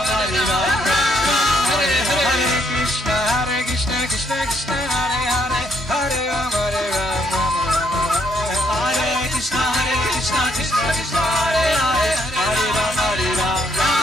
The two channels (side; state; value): both; normal; correlation 0.71